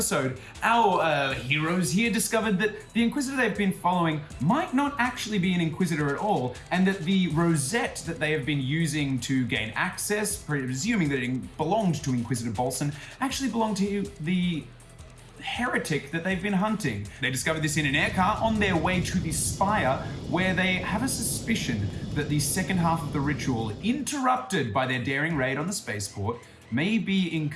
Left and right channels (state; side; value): identical; both; correlation 1.00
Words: our heroes here discovered that the Inquisitor they've been following might not actually be an Inquisitor at all, and that the rosette that they have been using to gain access, presuming that it belonged to Inquisitor Bolson, actually belonged to the Heretic that they've been hunting. They discovered this in an aircar on their way to the Spire, where they have a suspicion that the second half of the ritual, interrupted by their daring raid on the spaceport, may be in